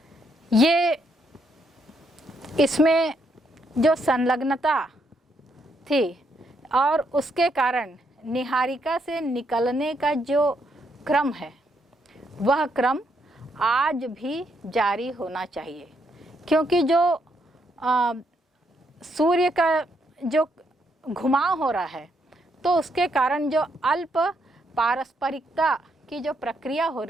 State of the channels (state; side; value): normal; both; correlation 0.76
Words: ये इसमें जो संलग्नता थी और उसके कारण निहारिका से निकलने का जो क्रम है वह क्रम आज भी जारी होना चाहिए, क्योंकि जो सूर्य का जो घुमाव हो रहा है तो उसके कारण जो अल्प पारस्परिकता की जो प्रक्रिया हो